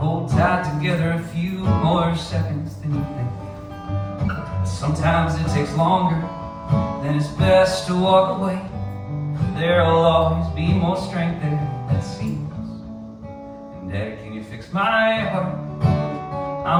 tight together a few more seconds than you think. Sometimes it takes longer, then it's best to walk away. There'll always be more strength there, that seems. And Daddy, can you fix my heart?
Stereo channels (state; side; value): identical; both; correlation 1.00